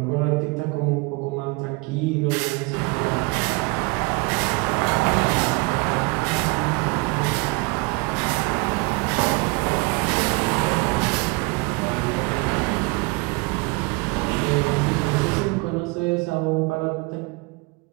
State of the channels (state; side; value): quieter; left; 27.6 dB